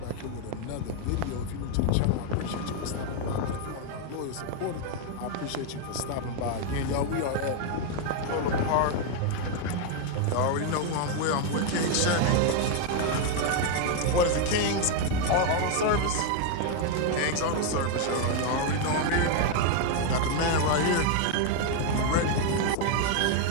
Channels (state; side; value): different; both; correlation 0.01